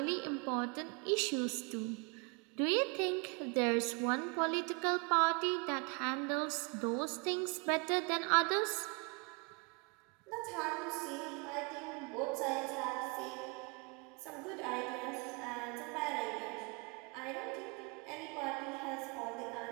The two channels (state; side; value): quieter; left; 33.0 dB